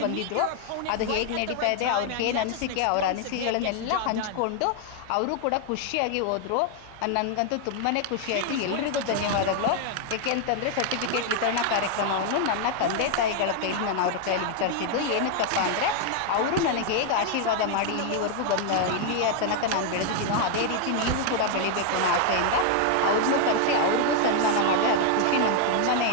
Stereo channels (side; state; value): both; different; correlation 0.00